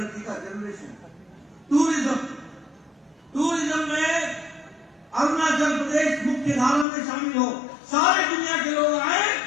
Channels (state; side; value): drops out; right; at 6.9 s